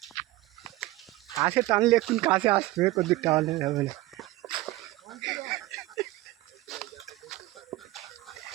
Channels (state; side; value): quieter; left; 18.1 dB